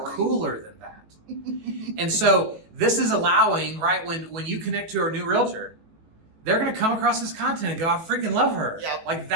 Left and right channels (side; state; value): left; late; 18 ms